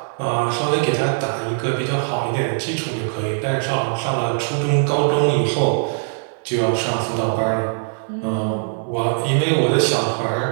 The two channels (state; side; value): silent; left; digital silence